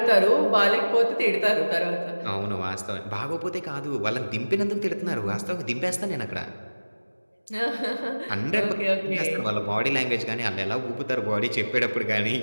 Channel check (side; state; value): both; inverted; correlation -1.00